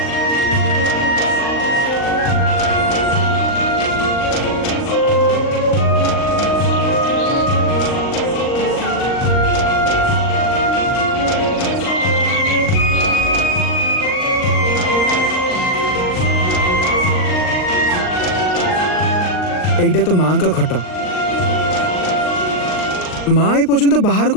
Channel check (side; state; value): right; late; 39 ms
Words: एइटा तो मां का खट। मां ए पर्यंत बाहर